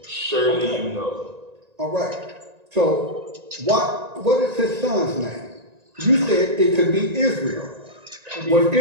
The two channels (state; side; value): late; left; 1.9 ms